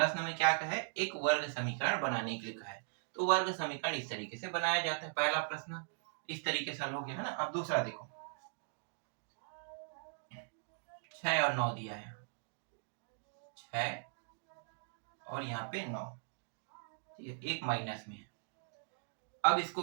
में क्या कहा है, एक वर्ग समीकरण बनाने के लिए कहा है। तो वर्ग समीकरण इस तरीके से बनाया जाता है। पहला प्रश्न इस तरीके से हल हो गया है ना। अब दूसरा देखो, 6 और 9 दिया है, 6 और यहाँ पे 9, ठीक है, एक माइनस में है। अब इसको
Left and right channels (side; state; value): left; silent; digital silence